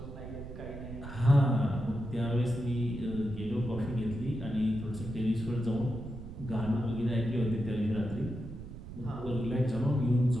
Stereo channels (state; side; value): noise; right; rumble, 11 dB below the sound